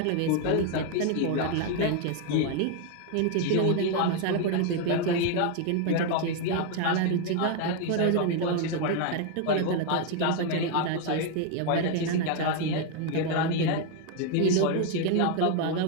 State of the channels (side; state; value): both; different; correlation 0.01